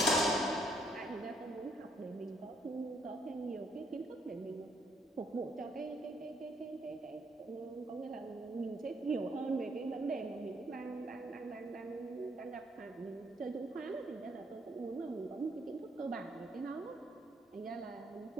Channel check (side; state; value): both; normal; correlation 0.69